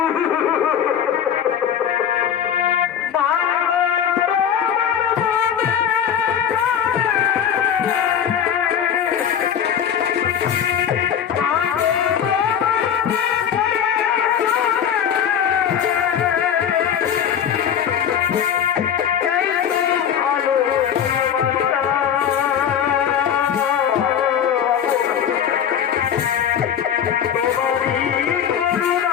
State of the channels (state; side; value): quieter; right; 8.8 dB